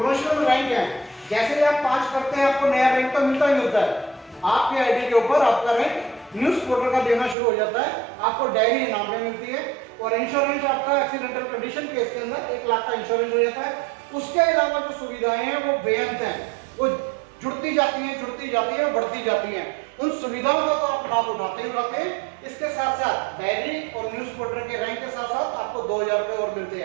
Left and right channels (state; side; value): drops out; left; at 7.4 s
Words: रैंक है, जैसे ही आप 5 करते हैं आपको नया रैंक तो मिलता ही मिलता है। आपके आईडी के ऊपर आपका रैंक न्यूज रिपोर्टर का देना शुरू हो जाता है, आपको डायरी इनाम में मिलती है और इंश्योरेंस आपका एक्सीडेंटल कंडीशन केस के अंदर 1 लाख का इंश्योरेंस हो जाता है। उसके अलावा जो सुविधाएं हैं वो बेअंत हैं, वो जुड़ती जाती हैं, बढ़ती जाती हैं। उन सुविधाओं का तो आप लाभ उठाते हैं। इसके साथ साथ डायरी और न्यूज रिपोर्टर के रैंक के साथ साथ आपको 2000 रुपए और मिलते